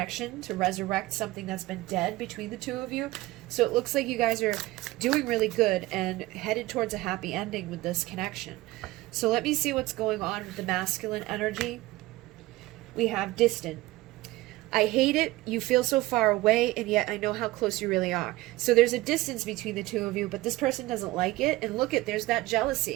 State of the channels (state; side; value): quieter; left; 18.8 dB